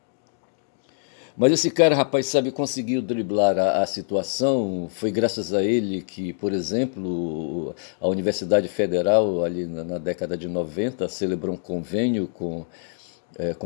Mas esse cara, rapaz, sabe, conseguiu driblar a situação. Foi graças a ele que, por exemplo, a Universidade Federal, ali na década de 90, celebrou um convênio com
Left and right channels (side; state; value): right; silent; digital silence